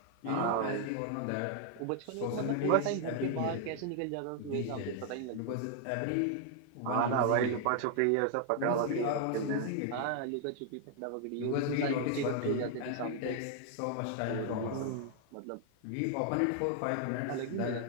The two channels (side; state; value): both; different; correlation 0.00